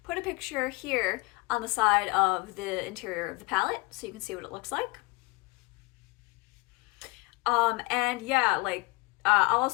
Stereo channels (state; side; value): quieter; right; 24.2 dB